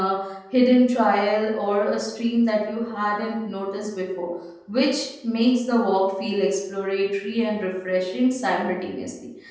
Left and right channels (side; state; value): both; identical; correlation 1.00